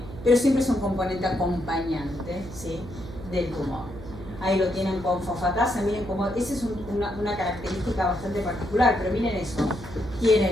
Pero siempre es un componente acompañante, ¿sí?, del tumor. Ahí lo tienen con fosfatasa, miren cómo, esa es una característica bastante particular, pero miren eso,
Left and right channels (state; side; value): noise; right; hum, 13 dB below the sound